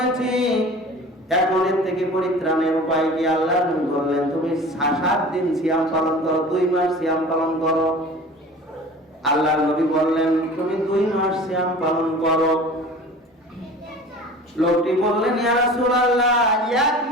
এখন এর থেকে পরিত্রাণের উপায় কি? আল্লাহ নবী বললেন, তুমি 7 দিন সিয়াম পালন করো, 2 মাস সিয়াম পালন করো। আল্লাহ নবী বললেন, তুমি 2 মাস সিয়াম পালন করো। লোকটি বললেন, ইয়া রাসূলুল্লাহ, 1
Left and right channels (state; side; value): normal; both; correlation 0.41